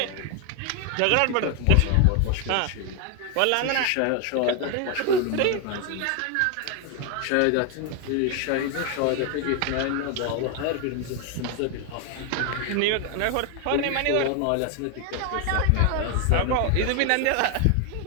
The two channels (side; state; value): both; different; correlation 0.01